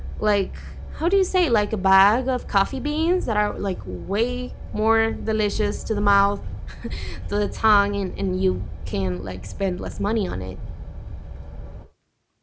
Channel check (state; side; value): identical; both; correlation 1.00